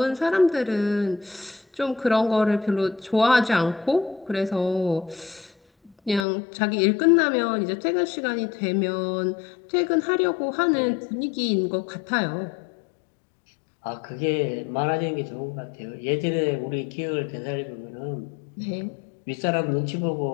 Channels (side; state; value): right; drops out; at 6.2 s